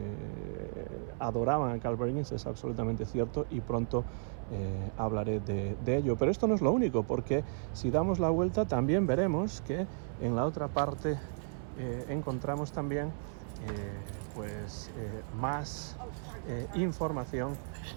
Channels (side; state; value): left; silent; 55 dB below the other